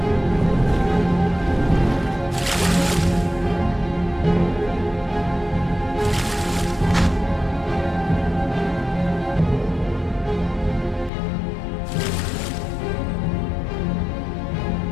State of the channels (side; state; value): right; drops out; at 11.1 s